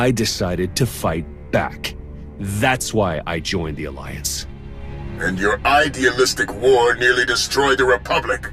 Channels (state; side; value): identical; both; correlation 1.00